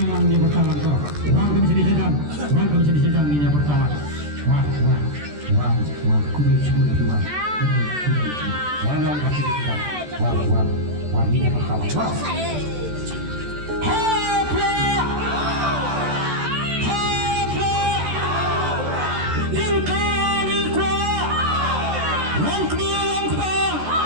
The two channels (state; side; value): late; left; 14 ms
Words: Wah, ini pertama mau